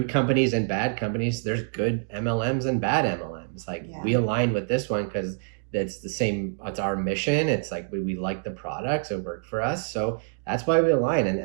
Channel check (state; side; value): silent; left; digital silence